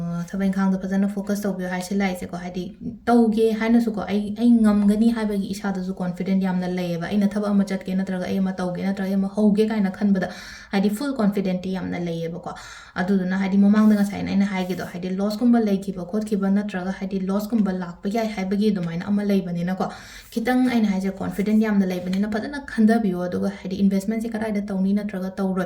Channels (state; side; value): identical; both; correlation 1.00